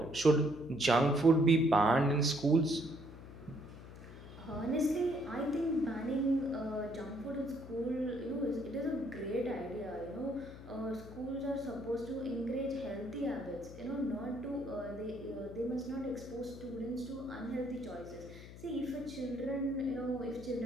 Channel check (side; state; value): left; noise; hum, 15 dB below the sound